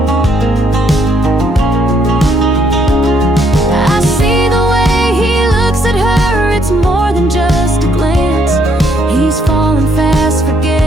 I see the way he looks at her, it's more than just a glance. He's falling fast,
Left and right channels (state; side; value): normal; both; correlation 0.70